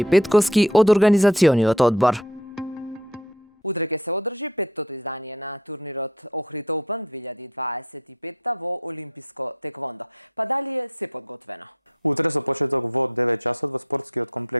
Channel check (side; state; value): both; normal; correlation 0.46